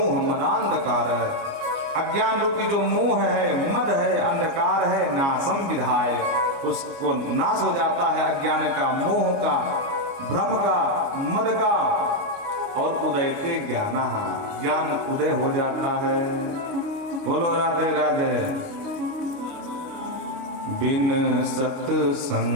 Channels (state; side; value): late; left; 29 ms